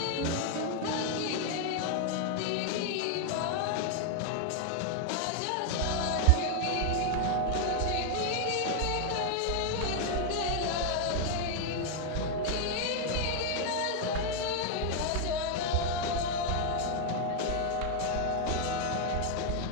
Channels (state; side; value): different; both; correlation 0.00